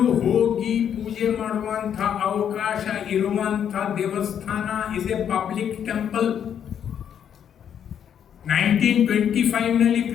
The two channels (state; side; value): quieter; right; 8.8 dB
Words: ಹೋಗಿ ಪೂಜೆ ಮಾಡುವಂಥ ಅವಕಾಶ ಇರುವಂಥ ದೇವಸ್ಥಾನ is a public temple. 1925